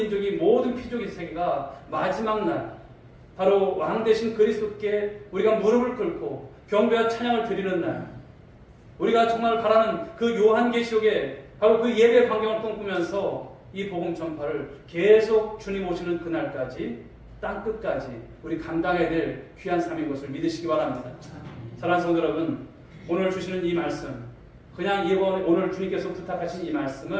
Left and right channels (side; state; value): both; identical; correlation 1.00